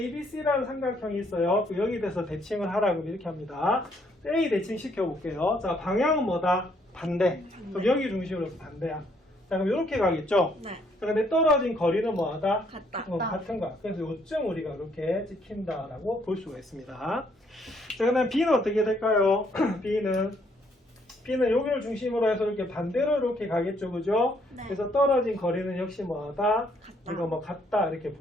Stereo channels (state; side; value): normal; both; correlation 0.69